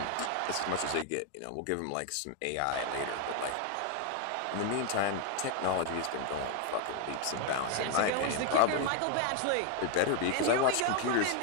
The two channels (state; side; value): different; both; correlation 0.01